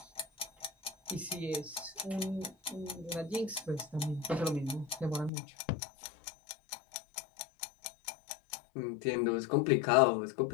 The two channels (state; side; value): drops out; right; at 5.3 s